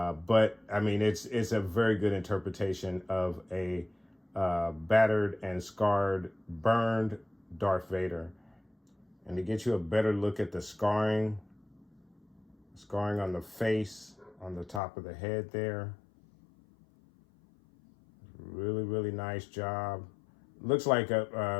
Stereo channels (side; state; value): right; drops out; at 14.8 s